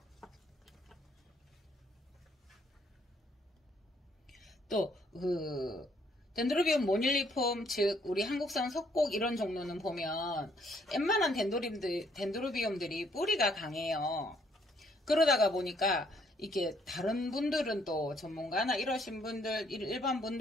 또, 덴드로비움 모닐리폼, 즉, 우리 한국산 석곡 이런 종류는 보면, 웬만한 덴드로비움들이 뿌리가 강해요. 그러다가 보니까, 이게 다른 분들은 또 전문가나 이러신 분들, 일반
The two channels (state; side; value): normal; both; correlation 0.67